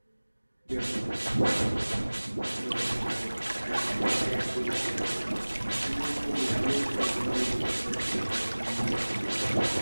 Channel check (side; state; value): both; inverted; correlation -1.00